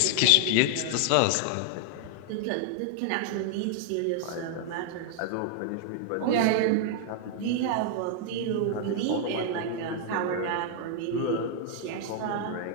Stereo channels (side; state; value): both; different; correlation 0.00